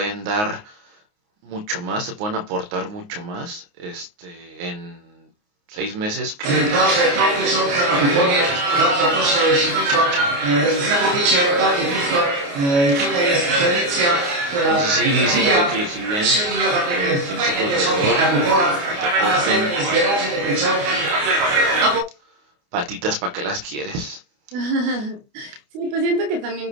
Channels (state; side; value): late; left; 29 ms